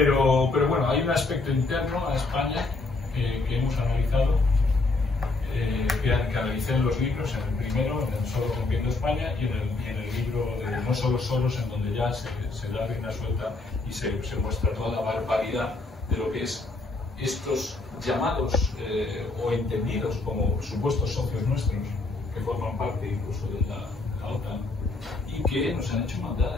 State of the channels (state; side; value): quieter; right; 3.4 dB